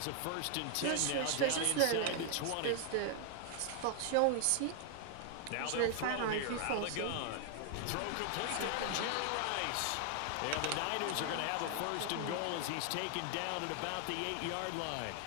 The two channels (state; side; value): different; both; correlation 0.00